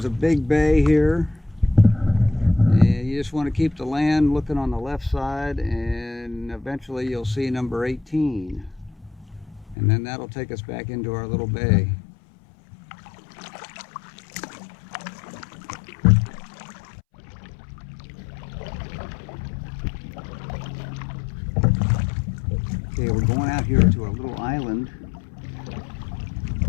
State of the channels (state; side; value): drops out; right; at 9.8 s